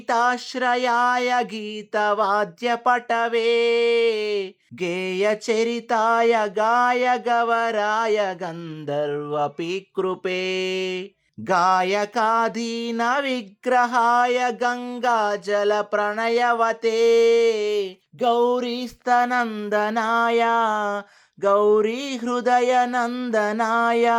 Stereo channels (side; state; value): both; identical; correlation 1.00